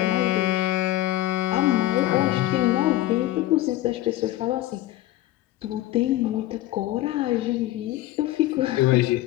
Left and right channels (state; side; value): quieter; right; 15.6 dB